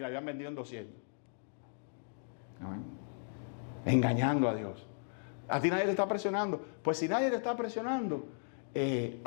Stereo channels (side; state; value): right; silent; digital silence